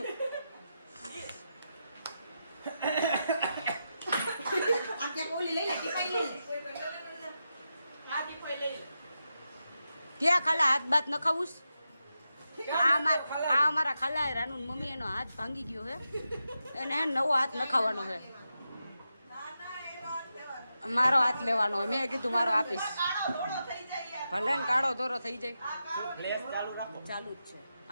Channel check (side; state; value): both; inverted; correlation -0.88